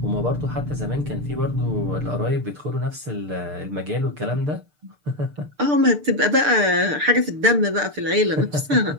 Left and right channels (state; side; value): late; left; 6.7 ms